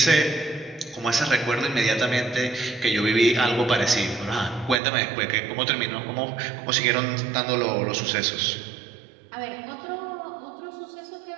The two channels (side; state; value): left; drops out; at 4.8 s